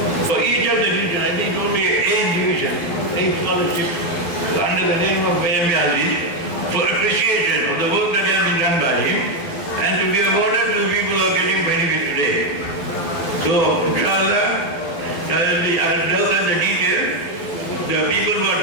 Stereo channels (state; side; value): late; right; 12 ms